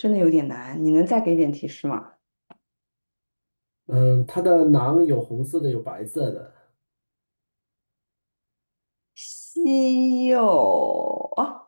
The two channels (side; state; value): both; inverted; correlation -1.00